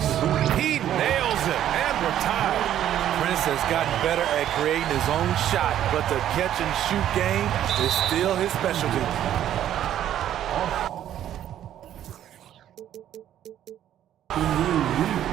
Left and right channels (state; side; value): quieter; left; 11.2 dB